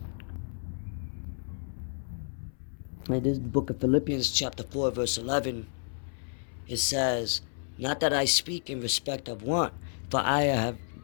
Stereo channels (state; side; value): silent; right; 57 dB below the other